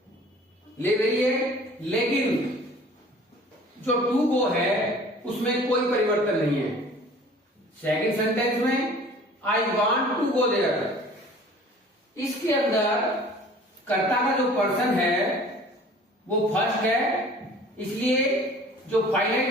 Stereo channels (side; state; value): both; normal; correlation 0.48